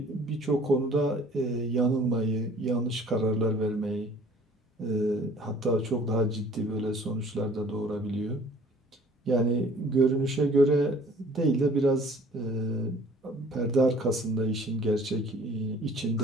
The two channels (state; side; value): normal; both; correlation 0.53